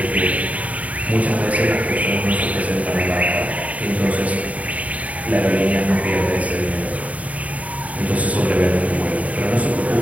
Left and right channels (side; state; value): left; late; 0.069 ms